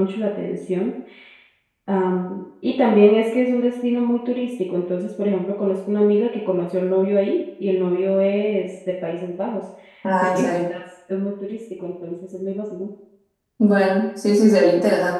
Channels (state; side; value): identical; both; correlation 1.00